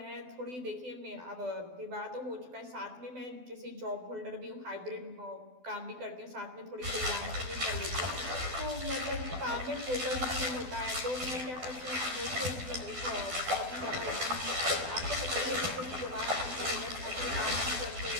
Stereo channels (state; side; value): late; left; 12 ms